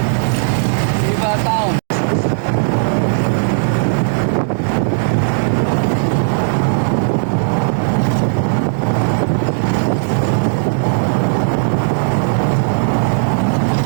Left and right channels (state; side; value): silent; left; digital silence